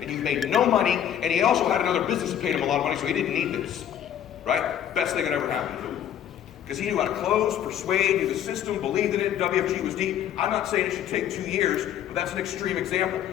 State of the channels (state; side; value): quieter; right; 10.2 dB